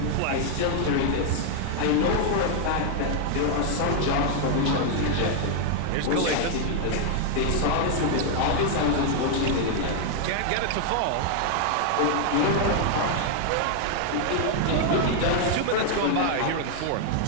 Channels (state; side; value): different; both; correlation 0.00